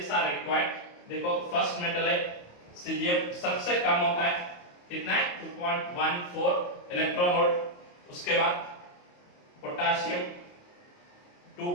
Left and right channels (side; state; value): right; late; 28 ms